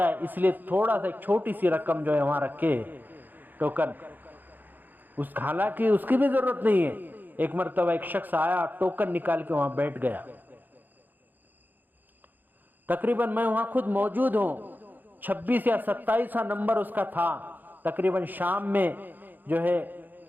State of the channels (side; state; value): left; late; 0.087 ms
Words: اس لیے تھوڑا سا ایک چھوٹی سی رقم جو ہے وہاں رکھے ٹوکن، حالانکہ اس کی بھی ضرورت نہیں ہے۔ ایک مرتبہ ایک شخص آیا، ٹوکن نکال کے وہاں بیٹھ گیا، تقریباً میں وہاں خود موجود ہوں، 26 یا 27 نمبر اس کا تھا، تقریباً شام میں جو ہے